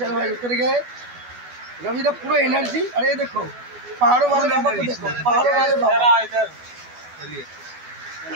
ভাই উতরে गए, रविदा पूरा एनर्जी। अरे ये देखो पहाड़ों वाले बाबा को देखो, पहाड़ों वाले बाबा। चलिए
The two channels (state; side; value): late; left; 12 ms